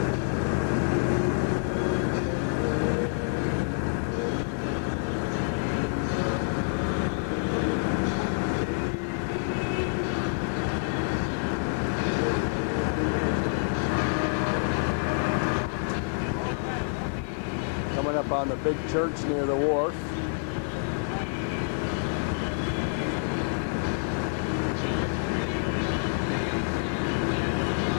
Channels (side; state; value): right; silent; digital silence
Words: Coming up on the big church near the wharf.